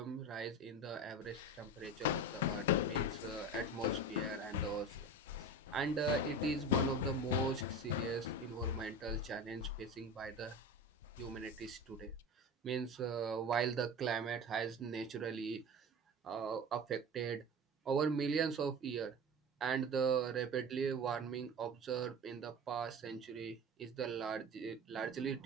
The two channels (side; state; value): both; normal; correlation 0.31